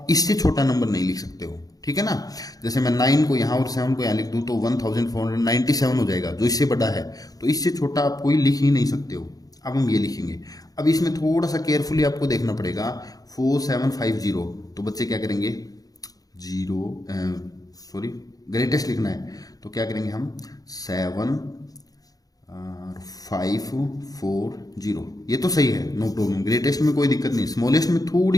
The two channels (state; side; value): late; right; 0.18 ms